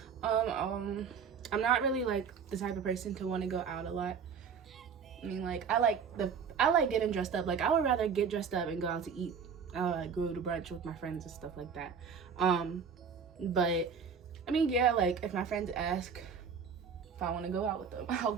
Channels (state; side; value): quieter; left; 6.4 dB